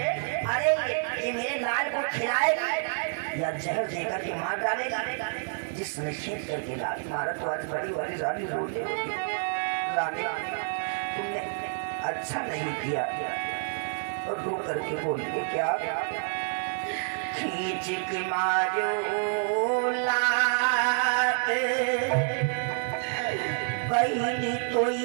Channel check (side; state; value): left; silent; digital silence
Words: अरे ये मेरे लाल को खिलाएगी या जहर देकर के मार डालेगी? जिसने खींच करके लाल मारा तो आज बड़ी वाली रानी रोने लगी। रानी तुमने अच्छा नहीं किया, और रो करके बोलिए क्या? खींच के मारो लात बहनी तो